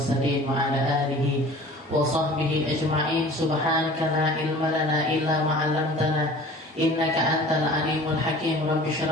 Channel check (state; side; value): normal; both; correlation 0.44